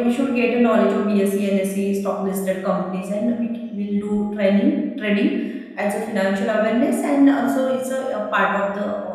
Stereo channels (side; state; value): both; identical; correlation 1.00